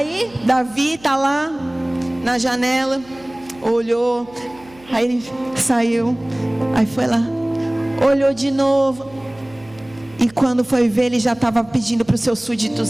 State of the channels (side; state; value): right; noise; hum, 24 dB below the sound